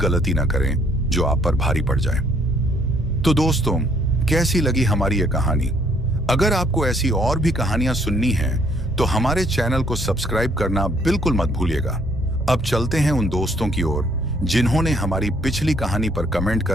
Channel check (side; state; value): both; normal; correlation 0.65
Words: ना करें जो आप पर भारी पड़ जाए। तो दोस्तों, कैसी लगी हमारी ये कहानी? अगर आपको ऐसी और भी कहानियां सुननी हैं तो हमारे चैनल को सब्सक्राइब करना बिल्कुल मत भूलिएगा। अब चलते हैं उन दोस्तों की ओर जिन्होंने हमारी पिछली कहानी पर कमेंट